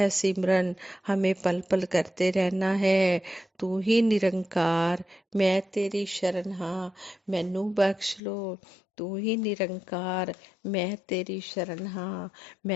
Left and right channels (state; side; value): drops out; right; at 8.2 s